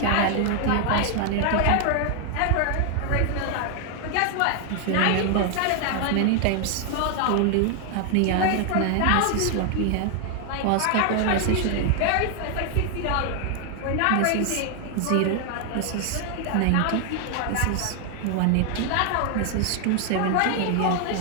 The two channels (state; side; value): different; both; correlation 0.00